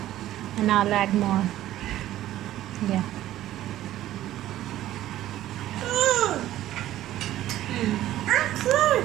and I'll add more. Yeah.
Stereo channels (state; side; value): quieter; left; 13.7 dB